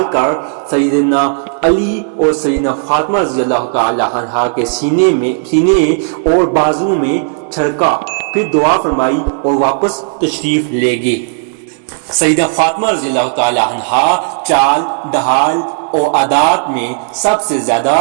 کر سیدنا علی اور سیدنا فاطمہ رضی اللہ تعالی عنہ کے سینے اور بازو میں چھڑکا، پھر دعا فرمائی اور واپس تشریف لے گئے۔ سیدہ فاطمہ رضی اللہ تعالی عنہ چال، ڈھال اور عادات میں سب سے زیادہ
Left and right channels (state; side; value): silent; left; digital silence